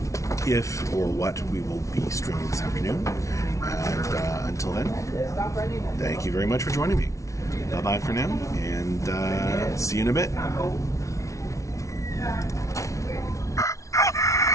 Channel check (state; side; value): late; right; 0.15 ms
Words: if or what we will be streaming this afternoon. And until then, thank you very much for joining me. Bye-bye for now, and see you in a bit.